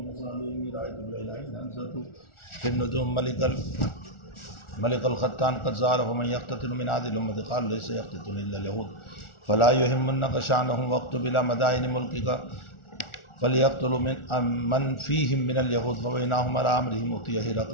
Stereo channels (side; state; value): right; late; 1.4 ms